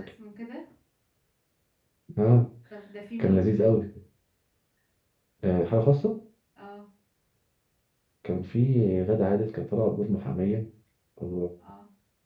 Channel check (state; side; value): identical; both; correlation 1.00